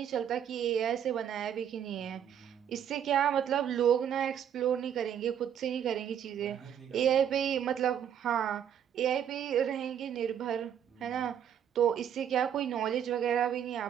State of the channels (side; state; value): left; quieter; 9.2 dB